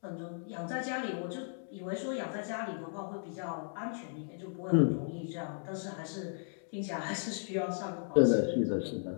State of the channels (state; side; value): silent; right; digital silence